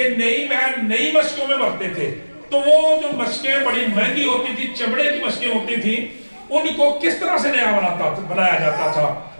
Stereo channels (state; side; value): inverted; both; correlation -1.00